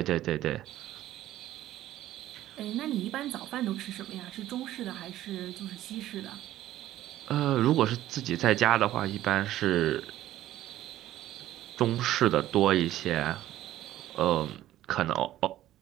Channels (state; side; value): quieter; left; 13.9 dB